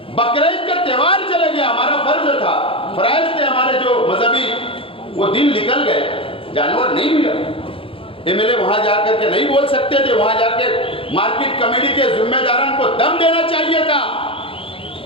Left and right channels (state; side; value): late; right; 0.26 ms